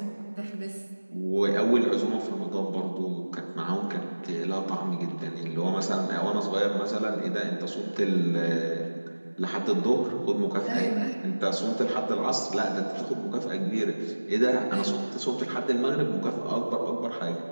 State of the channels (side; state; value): both; inverted; correlation -1.00